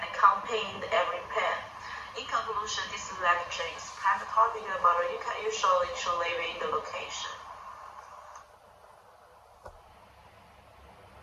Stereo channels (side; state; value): both; identical; correlation 1.00